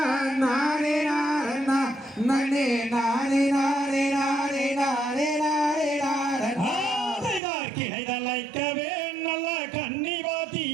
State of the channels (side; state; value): left; drops out; at 7.4 s